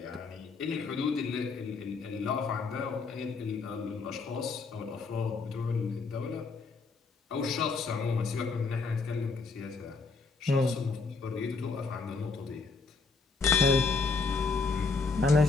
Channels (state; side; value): quieter; right; 4.4 dB